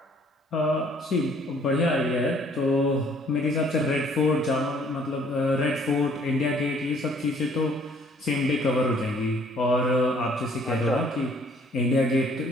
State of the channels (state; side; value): normal; both; correlation 0.60